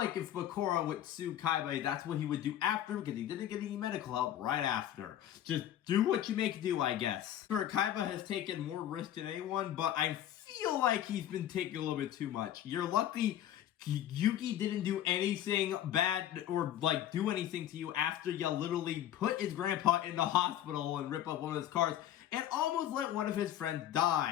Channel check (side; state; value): right; quieter; 11.6 dB